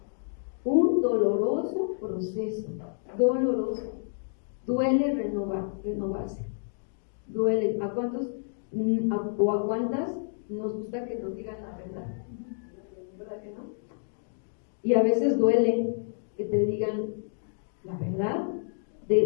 un doloroso proceso, doloroso. Duele renovarse, duele. ¿A cuántos o a cuántas nos gusta que nos digan la verdad? ¿Verdad que no? Y a veces duele que te digan la verdad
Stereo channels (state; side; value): silent; right; digital silence